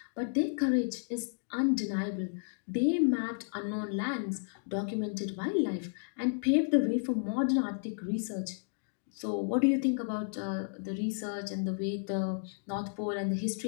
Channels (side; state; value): right; silent; digital silence